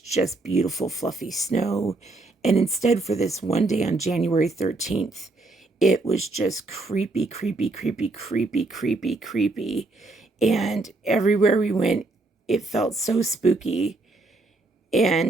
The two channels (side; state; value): left; quieter; 3.2 dB